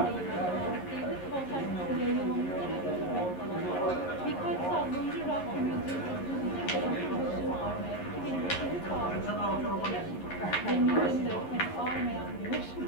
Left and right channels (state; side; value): late; right; 11 ms